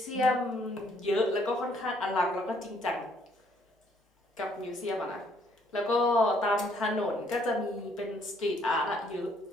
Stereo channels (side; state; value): both; normal; correlation 0.66